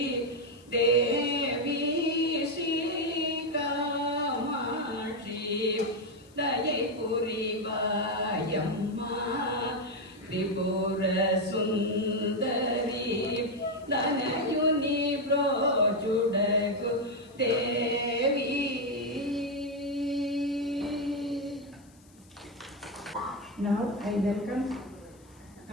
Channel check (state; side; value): noise; left; hiss, 29 dB below the sound